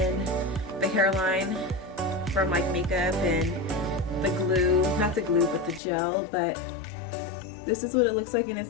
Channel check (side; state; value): right; drops out; at 5.8 s